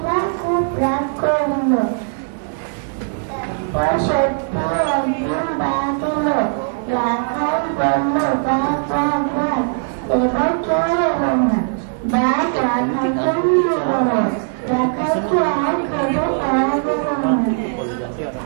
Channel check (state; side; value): silent; left; 63 dB below the other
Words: খুব রাগ করলো। তারপর সত্যি একদিন বাঘ এলো। রাখাল বললো, বাঘ বাঘ বাঘ, এবার কেউ এলো না। বাঘ রাখালকে নিয়ে গেল। রাখালকে আর খেতে পারা গেল না।